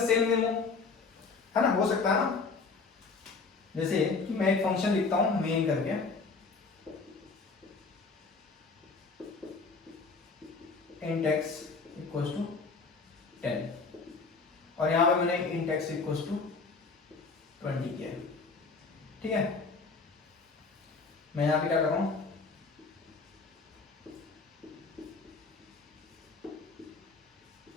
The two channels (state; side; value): quieter; right; 4.5 dB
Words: सेम नेम हो, है ना, हो सकता है ना। जैसे कि मैं एक फंक्शन लिखता हूं मेन करके, int x इक्वल्स टू 10, और यहां पे मैंने int x इक्वल्स टू 20 किया, ठीक है। मैं यहां पे क्या कर रहा हूं,